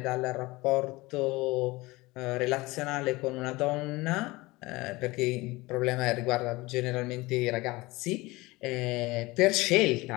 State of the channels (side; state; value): right; quieter; 21.5 dB